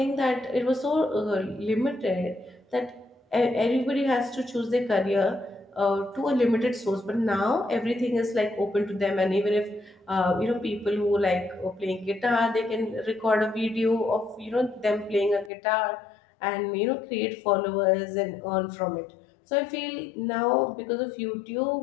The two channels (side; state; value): right; drops out; at 15.5 s